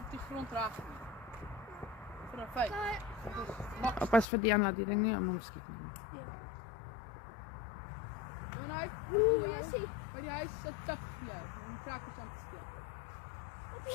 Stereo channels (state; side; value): drops out; right; at 4.2 s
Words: die grond raak nie. Vir 'n feit. Pas vir Diana die ding nie om hom skiet nie. Wanneer Oeh, jy sien. by die huis sit tik jy om krakkers aan te steek.